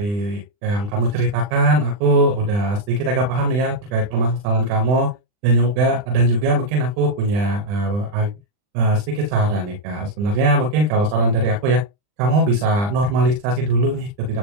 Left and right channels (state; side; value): late; left; 39 ms